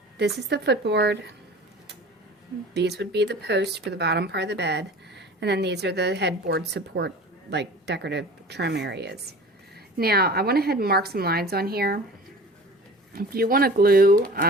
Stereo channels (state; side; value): normal; both; correlation 0.40